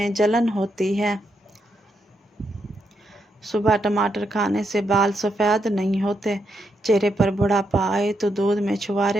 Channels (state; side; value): normal; both; correlation 0.81